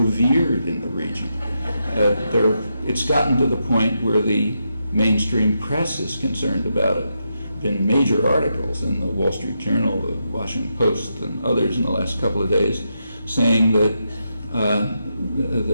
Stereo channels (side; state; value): both; inverted; correlation -0.84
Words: in the region. It's gotten to the point where the mainstream press is concerned about it. Been major articles in the Wall Street Journal, the Washington Post, and others in the last couple of days saying that